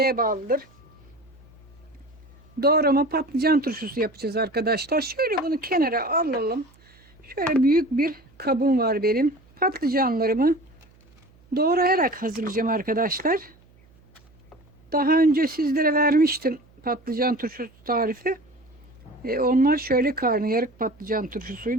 bağlıdır. Doğrama patlıcan turşusu yapacağız arkadaşlar. Şöyle bunu kenara alalım. Şöyle büyük bir kabım var benim. Patlıcanlarımı doğrayarak hazırlayacağım arkadaşlar. Daha önce sizlere vermiştim patlıcan turşusu tarifi. Onlar şöyle karnıyarık patlıcan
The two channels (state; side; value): noise; right; hum, 29 dB below the sound